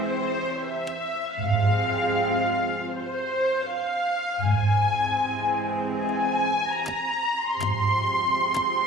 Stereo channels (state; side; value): normal; both; correlation 0.54